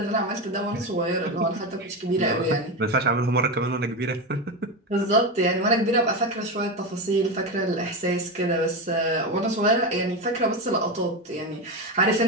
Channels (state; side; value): normal; both; correlation 0.16